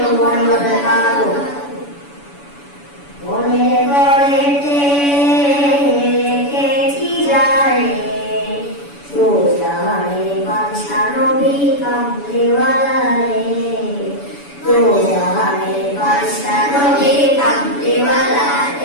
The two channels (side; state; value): right; late; 7.0 ms